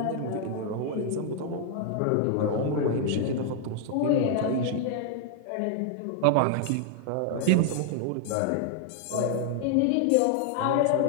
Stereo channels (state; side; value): different; both; correlation 0.00